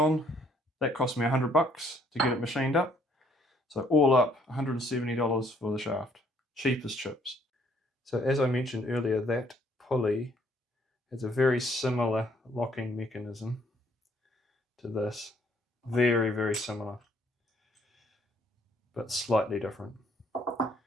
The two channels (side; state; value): both; normal; correlation 0.65